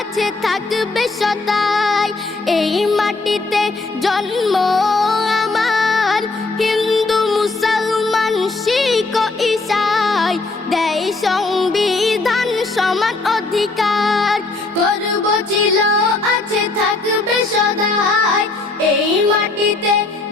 থাকবে সদাই, এই মাটিতে জন্ম আমার। হিন্দু মুসলমান শিখ ঈসাই দেয় সংবিধান সমান অধিকার। গর্ব ছিল আছে থাকবে সদাই, এই মাটিতে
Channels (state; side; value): quieter; right; 3.4 dB